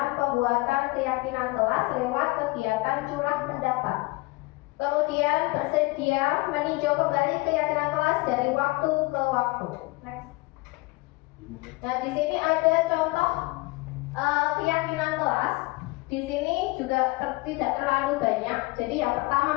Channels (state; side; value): quieter; right; 23.4 dB